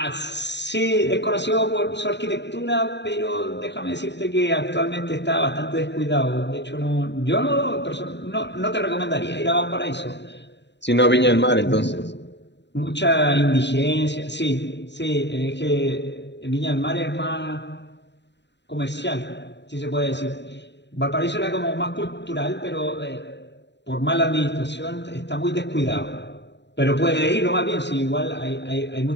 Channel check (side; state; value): right; late; 0.51 ms